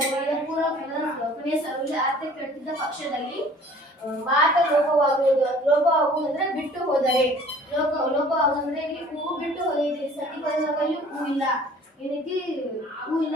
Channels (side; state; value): both; normal; correlation 0.51